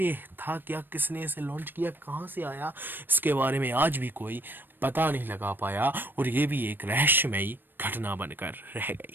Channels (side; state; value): left; late; 0.094 ms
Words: ये था क्या, किसने इसे लॉन्च किया, कहाँ से आया, इसके बारे में आज भी कोई पता नहीं लगा पाया और ये भी एक रहस्यमयी घटना बनकर रह